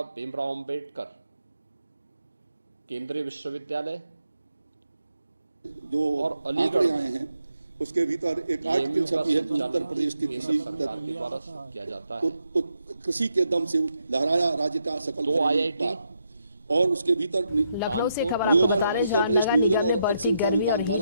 भीमराव अंबेडकर केंद्रीय विश्वविद्यालय जो और अलीगढ़ आए हैं उसके भीतर एक आर्टिकल छपी है कि उत्तर प्रदेश की सरकार के द्वारा किया जाता है। कृषि के दम से लहराया राज्य का सकल दो IIT और उसके भीतर नियोजन, उत्तर प्रदेश नियोजन और अल्पसंख्यक विभाग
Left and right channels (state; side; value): inverted; both; correlation -0.81